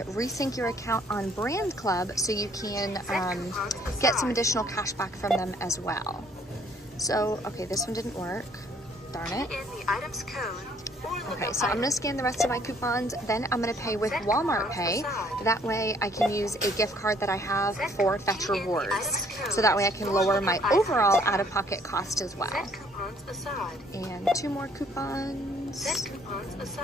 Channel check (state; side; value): normal; both; correlation 0.62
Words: your account on Brand Club so you can get some additional cash back from them as well. So, okay, this one didn't work. Darn it. In the item's code. Okay, so I'm gonna scan the rest of my coupons, then I'm gonna pay with Walmart Pay. That way I can use a gift card that I have for Fetch Rewards. So that way I can lower my overall out-of-pocket cost as well. And 2 more coupons.